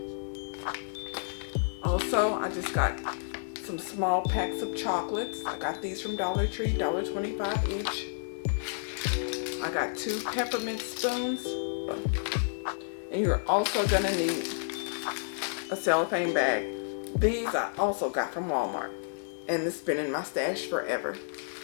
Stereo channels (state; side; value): silent; right; digital silence